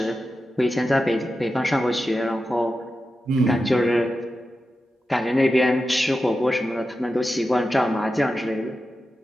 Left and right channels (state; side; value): normal; both; correlation 0.91